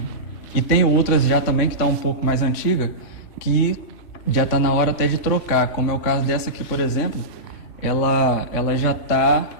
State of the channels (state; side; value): late; right; 3.5 ms